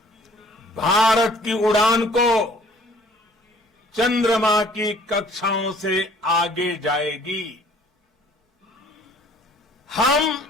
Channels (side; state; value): both; normal; correlation 0.55